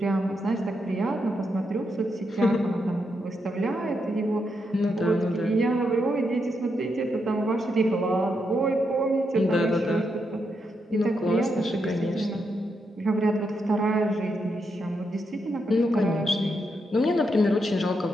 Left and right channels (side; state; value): both; normal; correlation 0.82